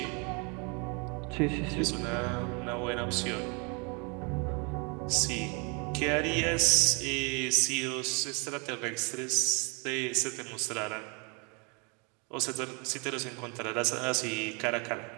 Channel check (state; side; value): quieter; left; 32.8 dB